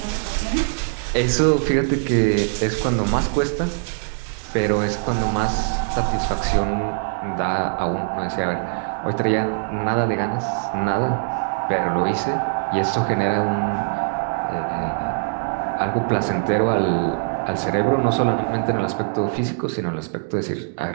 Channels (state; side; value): silent; left; digital silence